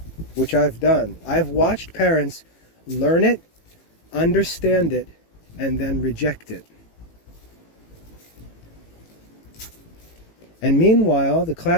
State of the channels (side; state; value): right; late; 18 ms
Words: which I've done. I've watched parents learn it, understand it, and then reject it. And meanwhile, the